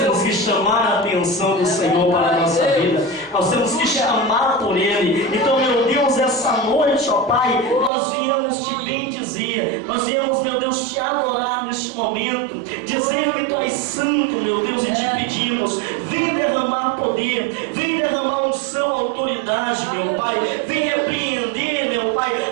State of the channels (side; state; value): left; drops out; at 7.9 s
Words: que chamar a atenção do Senhor para a nossa vida. Nós temos que chamar por Ele. Então, meu Deus, essa noite, ó Pai, nós viemos te bendizer. Nós viemos, meu Deus, te adorar neste momento, dizer que Tu és santo, meu Deus, e te pedimos, vem derramar poder, vem derramar unção, autoridade, meu Pai, vem repreender, meu Pai,